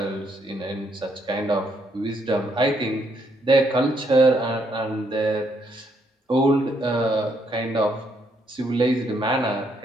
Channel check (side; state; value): both; normal; correlation 0.73